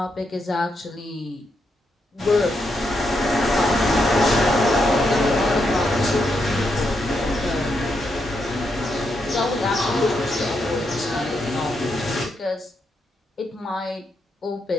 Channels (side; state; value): both; normal; correlation 0.81